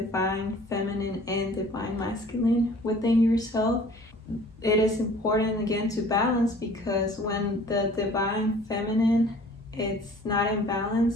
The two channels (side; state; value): both; normal; correlation 0.50